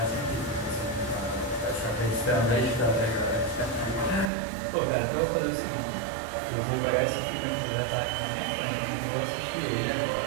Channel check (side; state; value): left; drops out; at 4.3 s